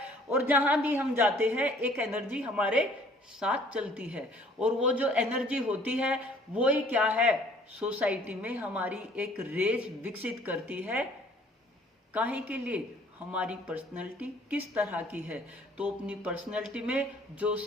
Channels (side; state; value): both; normal; correlation 0.57